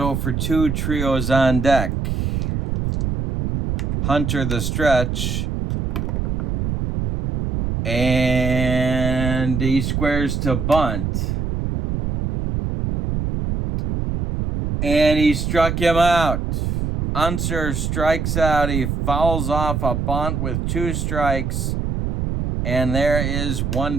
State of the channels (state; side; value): noise; right; rumble, 1 dB below the sound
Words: for 2. Trio's on deck. Hunter the stretch. And he squares to bunt. And he struck him out. Unser strikes out. He fouls off a bunt with 2 strikes. And there is 1